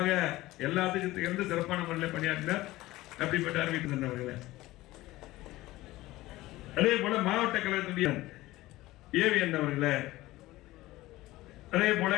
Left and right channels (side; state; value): right; quieter; 17.8 dB